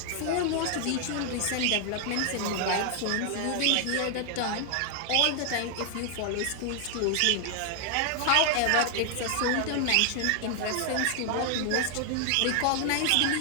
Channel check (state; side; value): different; both; correlation 0.00